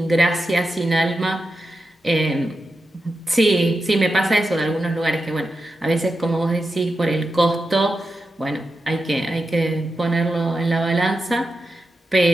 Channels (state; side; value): normal; both; correlation 0.89